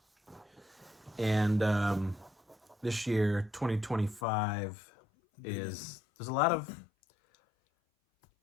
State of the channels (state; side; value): drops out; right; at 4.2 s